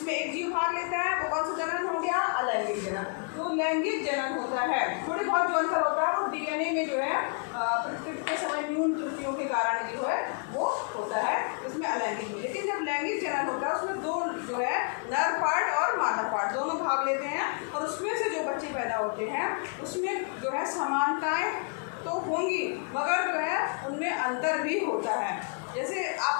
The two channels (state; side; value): quieter; right; 39.8 dB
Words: एक जीव भाग लेता है, वो कौन सा जनन हो गया, अलैंगिक जनन। तो लैंगिक जनन होता है, थोड़ी बहुत जो अंतर होता है वो डीएनए में जो है प्रकृति के समय न्यून त्रुटियों के कारण जो है वो होता है इसमें अलैंगिक में। लेकिन जब लैंगिक जनन होता है उसमें दो जो है नर पार्ट और मादा पार्ट दोनों भाग लेते हैं, और उसमें से जो बच्चे पैदा होते हैं उसमें जो है समानताएं तो होंगी मगर जो है उनमें अंतर भी होता है। जैसे